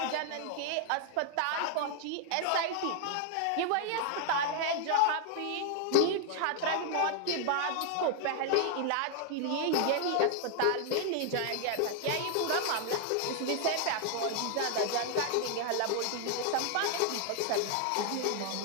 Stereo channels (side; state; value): both; different; correlation 0.00